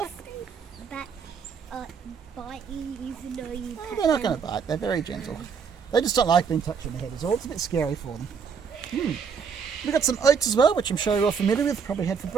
That bite you even though you Oh, pet they're not them. going to bite. They're very gentle. They just don't like being touched on the head is all. It's a bit scary for them. We've got some oats as well, which I'm sure you're all familiar with, probably had for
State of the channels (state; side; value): quieter; left; 6.2 dB